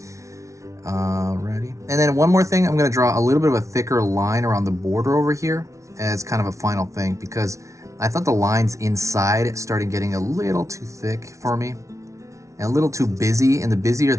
Ready. And then one more thing, I'm going to draw a little bit of a thicker line around the border over here as kind of a final thing, because I thought the lines inside started getting a little too thick for me and a little too busy, and the busier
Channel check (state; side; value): late; left; 0.14 ms